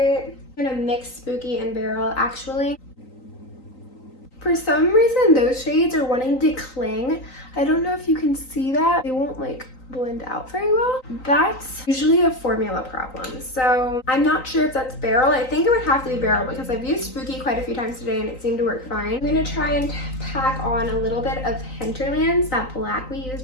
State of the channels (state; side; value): late; right; 3.9 ms